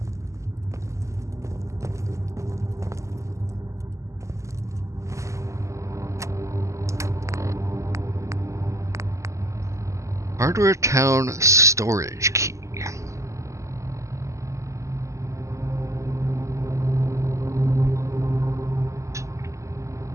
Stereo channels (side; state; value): left; late; 0.15 ms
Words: Hardware Town storage key.